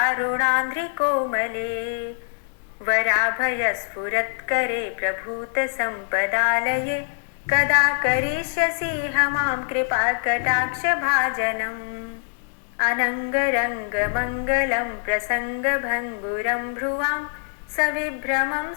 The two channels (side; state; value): right; silent; digital silence